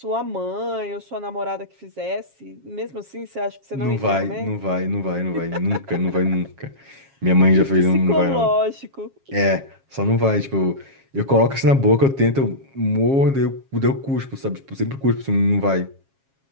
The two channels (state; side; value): late; left; 7.3 ms